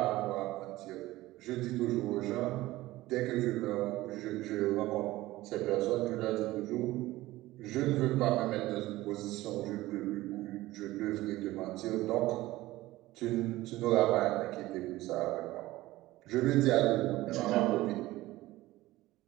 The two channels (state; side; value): quieter; left; 17.5 dB